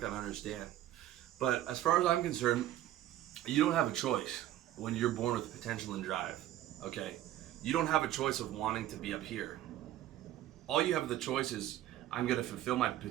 going to understand. But as far as I'm concerned, you don't have a choice when you're born with potential and drive. Okay? You don't have a choice of wanting to be up here. All you have the choice is, I'm going to fulfill my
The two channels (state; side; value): quieter; left; 13.2 dB